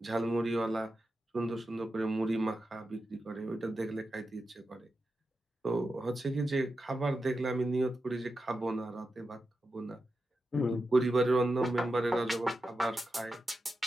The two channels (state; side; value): normal; both; correlation 0.90